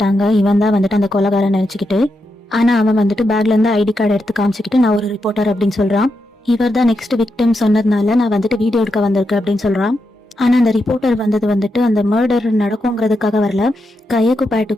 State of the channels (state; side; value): normal; both; correlation 0.85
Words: இவன் தான் வந்துட்டு அந்த கொலைகாரன் நினைச்சுக்கிட்டு. ஆனா அவன் வந்துட்டு பேக்ல இருந்து ஐடி கார்டு எடுத்து காமிச்சுக்கிட்டு நான் ஒரு ரிப்போர்ட்டர் அப்படின்னு சொல்றான். இவர் தான் நெக்ஸ்ட் விக்டிம் சொன்னதுனால நான் வந்துட்டு வீடியோ எடுக்க வந்திருக்கேன் அப்படின்னு சொல்றான். ஆனா அந்த ரிப்போர்ட்டர் வந்தது வந்துட்டு அந்த மர்டர் நடக்குங்கிறதுக்காக வரல. கையக்கும்